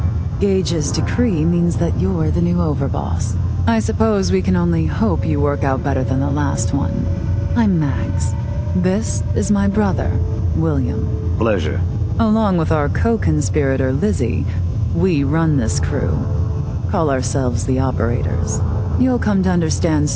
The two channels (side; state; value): both; identical; correlation 1.00